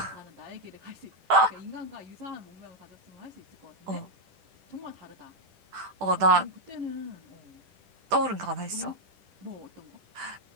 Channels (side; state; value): left; late; 10 ms